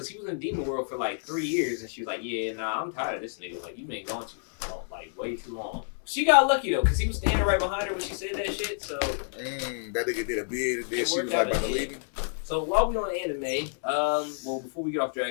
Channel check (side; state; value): right; silent; 56 dB below the other